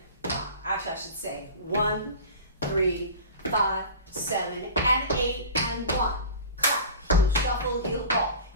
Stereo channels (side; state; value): both; inverted; correlation -0.36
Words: 5. Actually, I should say 1, 3, 5, 7, and 8 and 1. Clap, heel, shuffle, heel, ball,